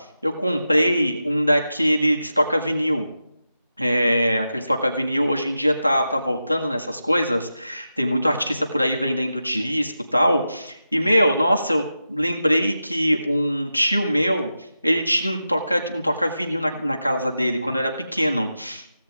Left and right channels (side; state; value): both; inverted; correlation -0.90